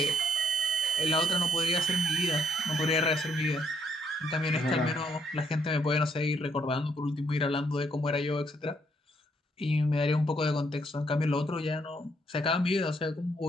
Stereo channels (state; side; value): normal; both; correlation 0.71